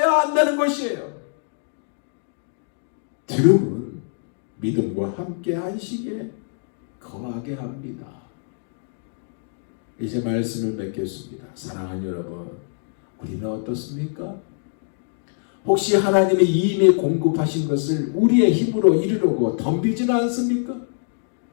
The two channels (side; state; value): right; silent; digital silence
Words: 한다는 것이에요. 들음은 믿음과 함께 안식에 거하게 합니다. 이제 말씀을 맺겠습니다. 사랑하는 여러분, 우리는 어떻습니까? 혹시 하나님이 이미 공급하신 것을 우리의 힘으로 이루려고 덤비지는 않습니까?